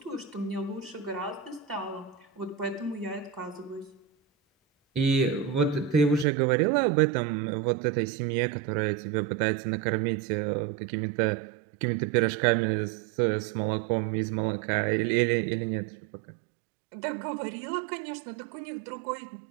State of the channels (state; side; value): drops out; left; at 6.2 s